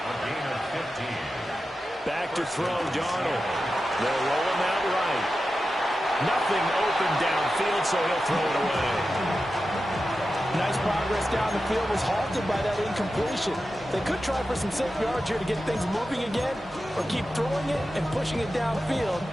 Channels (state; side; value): normal; both; correlation 0.92